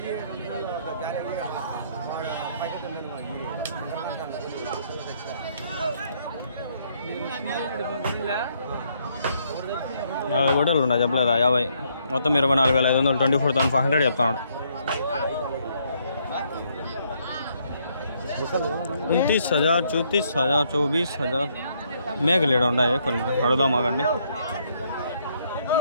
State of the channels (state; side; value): inverted; both; correlation -0.71